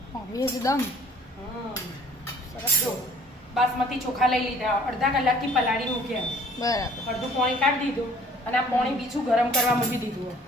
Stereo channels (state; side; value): normal; both; correlation 0.53